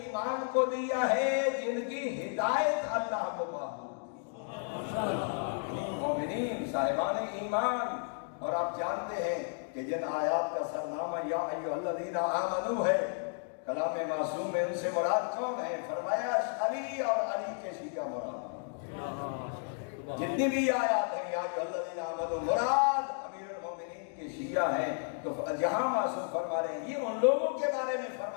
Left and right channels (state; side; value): silent; right; 56 dB below the other